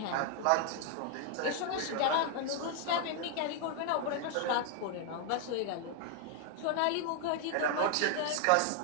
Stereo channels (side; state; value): both; different; correlation 0.00